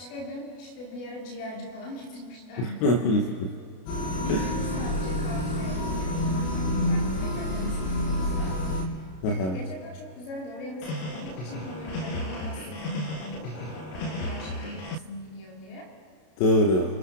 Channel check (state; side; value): late; right; 32 ms